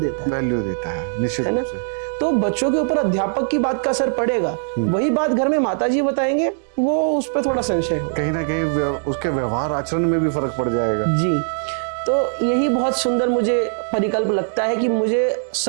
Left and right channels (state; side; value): silent; left; digital silence